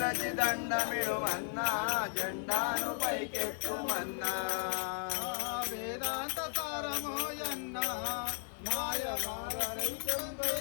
దండమిడు మన్నా జెండాను పైకెత్తు మన్నా వేదాంత సారమోయన్న మాయ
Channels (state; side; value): silent; right; 54 dB below the other